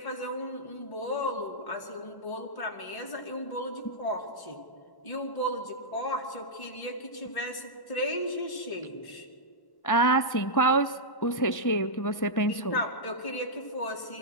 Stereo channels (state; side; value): late; right; 1.1 ms